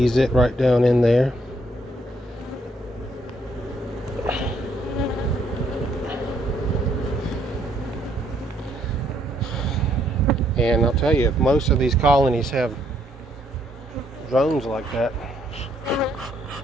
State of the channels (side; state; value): both; normal; correlation 0.70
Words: it right down in there. And I'll tell you, if most of these colonies have drones like that,